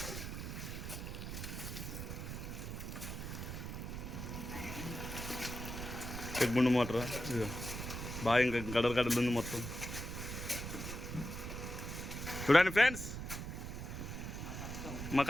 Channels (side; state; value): right; noise; rumble, 6 dB below the sound